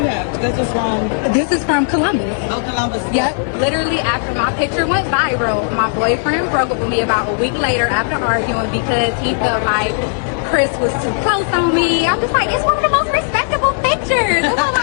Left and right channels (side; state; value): right; silent; digital silence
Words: have? This was from This is from Columbus. Columbus. Yep. Literally after my picture went viral, my boyfriend broke up with me about a week later after arguing because he felt like Chris was too close on me. I'm just like, it's one of the most respectable pictures. It's not